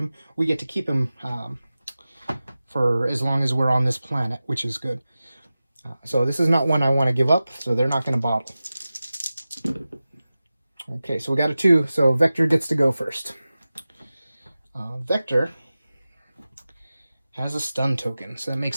we get to keep him for as long as we're on this planet, which is good. So this is not one I want to give up, so they're not going to bottle. Okay, so we got a 2, so Vector gets to go first. Vector has a stun token, so that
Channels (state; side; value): inverted; both; correlation -0.95